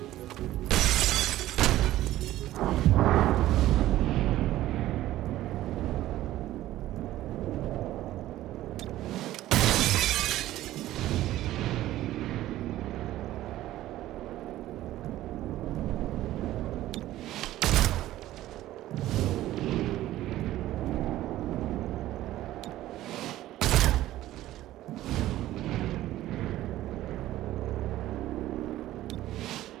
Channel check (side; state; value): left; quieter; 14.7 dB